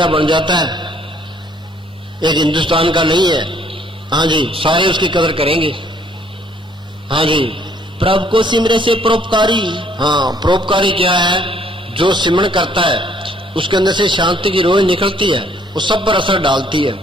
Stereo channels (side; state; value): both; normal; correlation 0.63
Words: बन जाता है, एक हिंदुस्तान का नहीं है। हाँ जी, सारे उसकी कदर करेंगे। हाँ जी, प्रभु को सिमरे से परोपकारी। हाँ, परोपकारी क्या है? जो सिमरण करता है उसके अंदर से शांति की रोह निकलती है, वो सब पर असर डालती है।